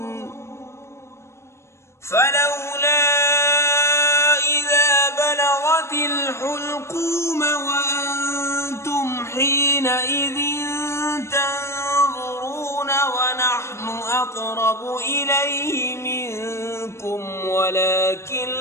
فلولا إذا بلغت الحلقوم وأنتم حينئذ تنظرون ونحن أقرب إليه منكم ولكن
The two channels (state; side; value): late; right; 0.13 ms